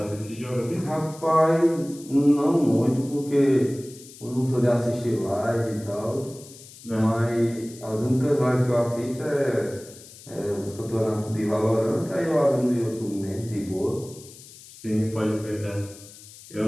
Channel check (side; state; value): left; noise; hiss, 19 dB below the sound